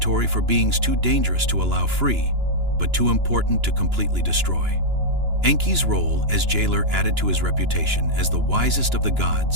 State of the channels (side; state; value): left; late; 2.9 ms